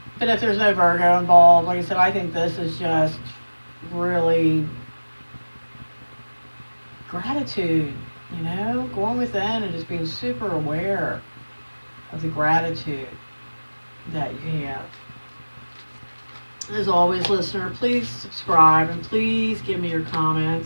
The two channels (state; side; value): inverted; both; correlation -1.00